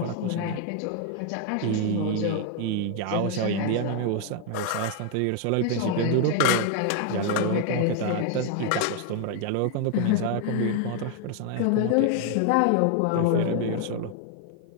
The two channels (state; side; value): different; both; correlation 0.00